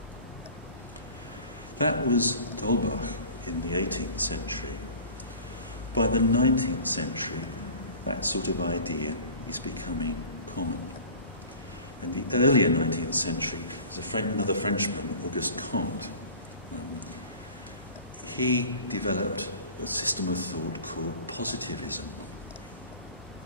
That was D'Holbach in the 18th century. By the 19th century, that sort of idea is becoming common. In the earlier 19th century, there's another Frenchman, Auguste Comte. He developed a system of thought called positivism.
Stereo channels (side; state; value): both; inverted; correlation -0.41